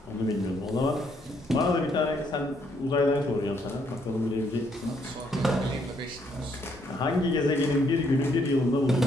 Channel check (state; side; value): normal; both; correlation 0.71